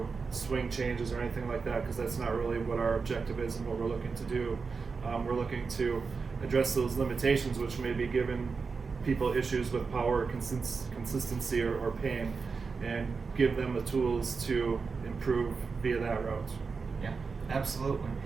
swing changes or anything like that, because that's not really what our objective is and what we're looking to do. We're looking to address those limitations which may be giving people issues with power, consistency, or pain, and give them the tools to improve via that route. Yeah. Absolutely.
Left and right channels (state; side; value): quieter; left; 4.9 dB